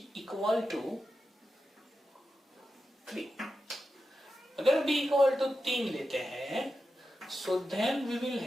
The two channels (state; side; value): normal; both; correlation 0.90